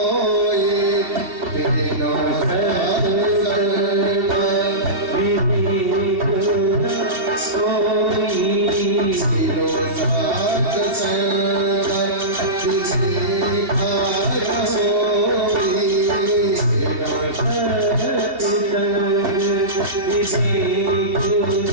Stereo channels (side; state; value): left; late; 2.7 ms